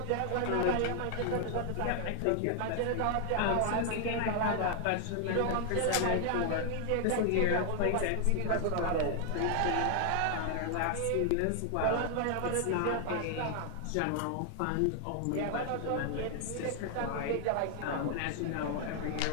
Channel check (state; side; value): different; both; correlation 0.00